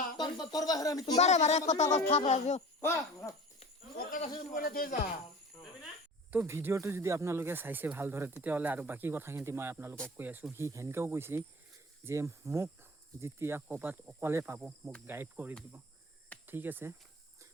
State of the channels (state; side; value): normal; both; correlation 0.39